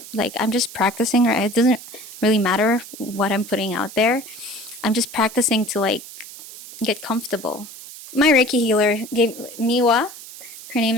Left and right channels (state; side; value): noise; right; hiss, 15 dB below the sound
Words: Like, I'm just practicing. Right? It doesn't really matter what I'm putting out there. I'm just practicing to, like, get comfortable. My Reiki healer gave Miwa. Her name